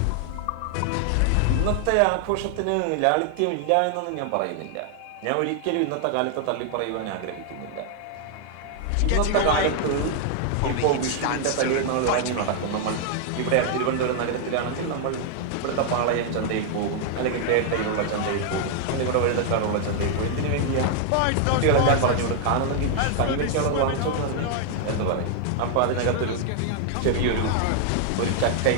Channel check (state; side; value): different; both; correlation 0.00